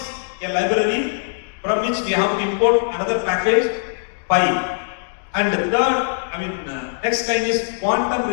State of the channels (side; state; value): right; silent; digital silence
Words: a library from which we have to import another package, Pi. And the third, next line is quantum